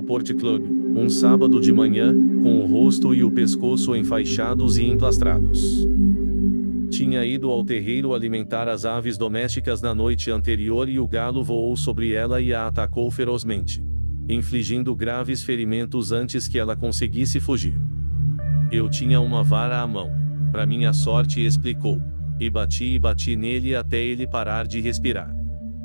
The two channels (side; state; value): both; inverted; correlation -1.00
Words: Port Club, um sábado de manhã, com o rosto e o pescoço enfaixados e emplastrados. Tinha ido ao terreiro alimentar as aves domésticas na noite anterior e o galo voou sobre ela e a atacou ferozmente, infligindo graves ferimentos antes que ela conseguisse fugir. Eu tinha uma vara à mão, para minha sorte, explicou, e bati nele até ele parar de respirar.